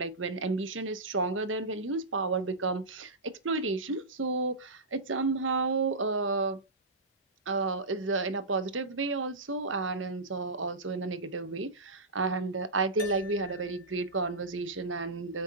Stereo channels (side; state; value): left; quieter; 3.1 dB